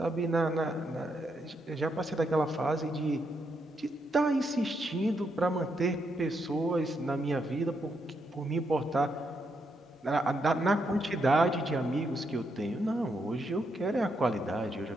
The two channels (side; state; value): both; normal; correlation 0.79